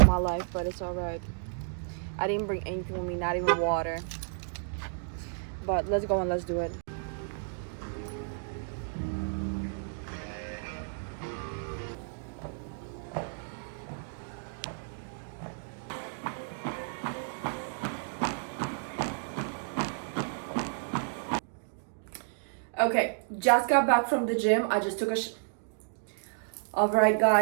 my life, but it's all right. I didn't bring anything with me, not even water. But let's go and let's do it. Okay, just got back from the gym. I just took a all right,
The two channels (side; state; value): left; silent; digital silence